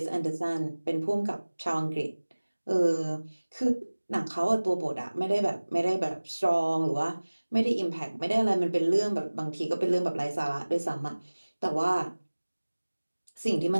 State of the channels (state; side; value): inverted; both; correlation -1.00